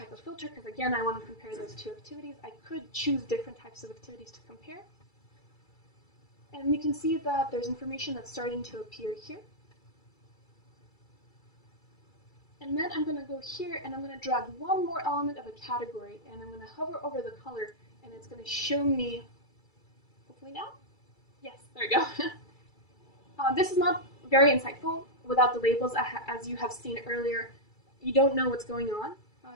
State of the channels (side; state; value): right; late; 2.3 ms